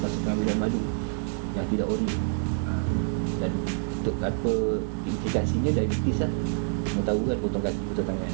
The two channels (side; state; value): left; silent; 60 dB below the other